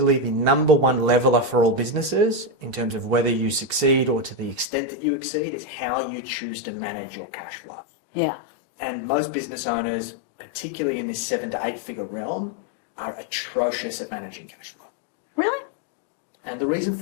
the number one leveler for all businesses in terms of whether you succeed or to the extent that you exceed is how you choose to manage your cash flow. Yeah. And most business owners, particularly in this 7 to 8 figure realm, are atrocious at managing cash flow. Really? And the reason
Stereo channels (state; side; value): drops out; right; at 4.7 s